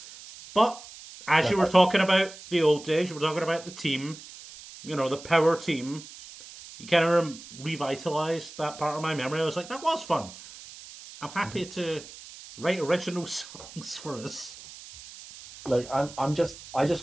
But as you were talking about the old days, you were talking about the team, you know, the power team, you kind of revitalised that part of my memory. I was like, that was fun. I'm happy to write original songs for us. Look, I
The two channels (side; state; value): right; noise; hiss, 16 dB below the sound